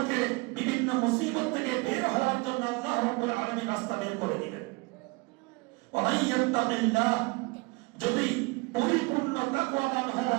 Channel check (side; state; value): left; quieter; 26.6 dB